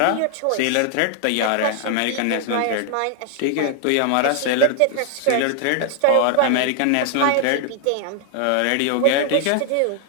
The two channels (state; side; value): different; both; correlation 0.00